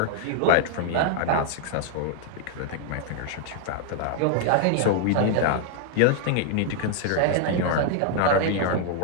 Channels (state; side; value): different; both; correlation 0.00